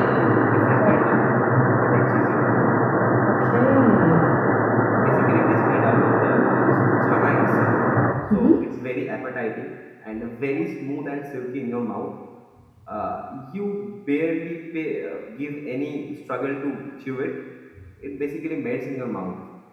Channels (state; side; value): identical; both; correlation 1.00